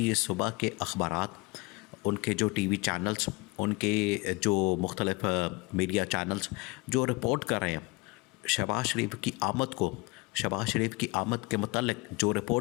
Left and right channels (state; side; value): quieter; right; 25.8 dB